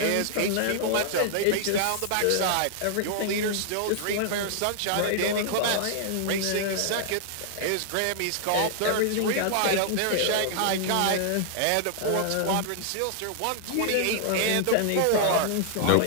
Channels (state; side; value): different; both; correlation -0.01